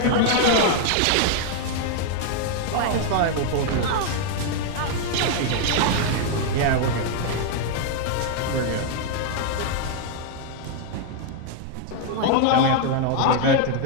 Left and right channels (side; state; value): both; different; correlation 0.00